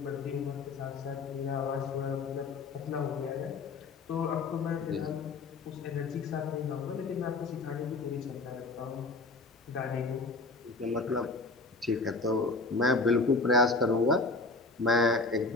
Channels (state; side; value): quieter; right; 3.5 dB